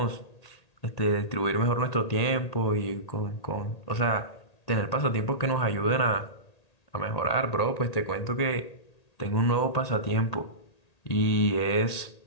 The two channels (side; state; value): right; late; 1.8 ms